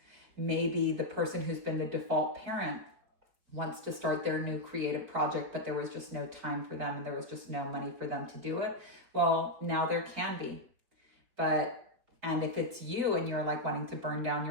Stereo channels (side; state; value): left; late; 4.8 ms